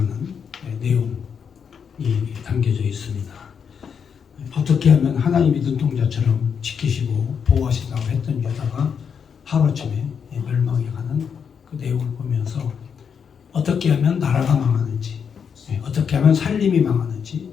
내용이 담겨져 있습니다. 어떻게 하면 하나님이 눈동자처럼 지키시고 보호하신다고 했던 유다가 하루아침에 멸망해 가는 그 내용을 보면서 어떻게 하면 나라가 망하는지, 어떻게 하면 살림이 망하는지,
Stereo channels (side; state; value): right; quieter; 6.9 dB